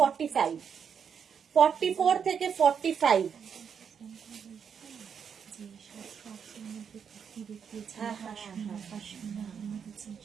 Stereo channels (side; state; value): left; quieter; 7.1 dB